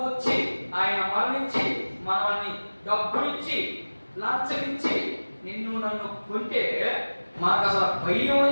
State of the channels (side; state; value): both; inverted; correlation -1.00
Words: వచ్చి ఆయన మరణించి మనల్ని డబ్బులిచ్చి లంచమిచ్చి నన్ను కొంటే మనకు అసలు భయం